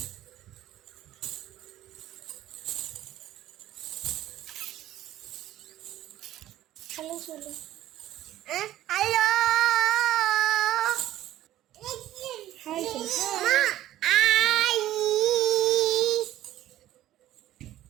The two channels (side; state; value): left; quieter; 13.6 dB